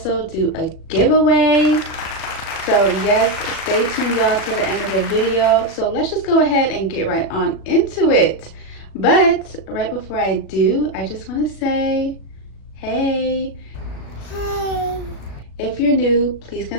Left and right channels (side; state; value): right; late; 36 ms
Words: do a giveaway. So yes, stay tuned y'all to the end of the video. So let's just go ahead and get right on into it. But right before I do, I just want to say, hey. If you're new, please